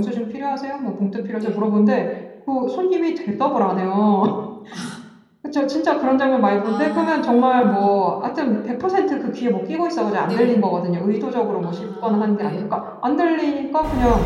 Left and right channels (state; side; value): identical; both; correlation 1.00